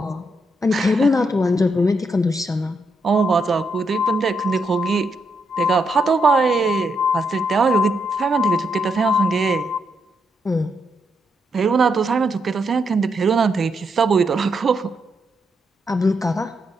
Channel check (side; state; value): both; normal; correlation 0.79